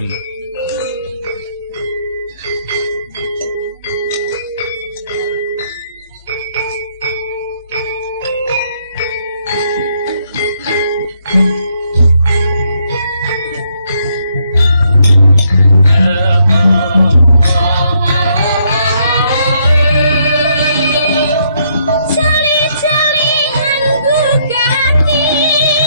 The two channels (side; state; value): both; inverted; correlation -0.73